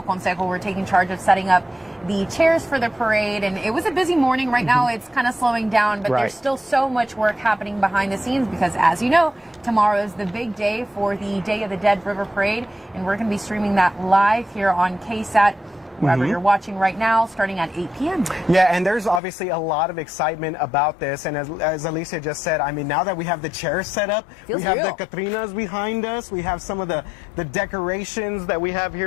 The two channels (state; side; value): drops out; right; at 19.2 s